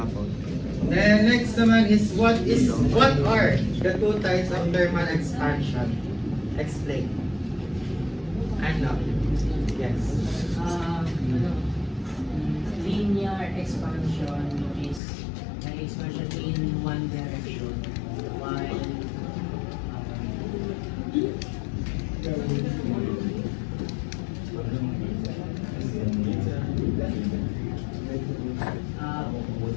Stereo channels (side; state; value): right; drops out; at 15.0 s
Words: Then next naman is what are the two types of thermal expansion? Explain. Ano? Yes. Linear expansion is an expansion in one direction, while